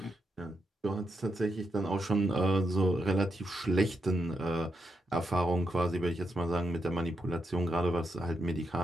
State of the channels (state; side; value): normal; both; correlation 0.83